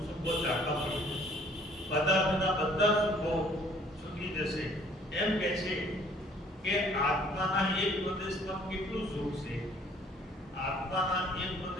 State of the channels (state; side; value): normal; both; correlation 0.58